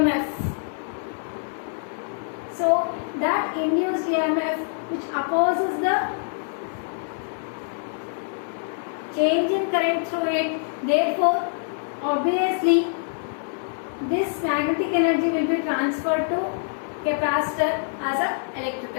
So that induced EMF which opposes the change in current through it, therefore obviously this magnetic energy will be transferred to capacitor as an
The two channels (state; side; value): silent; right; 62 dB below the other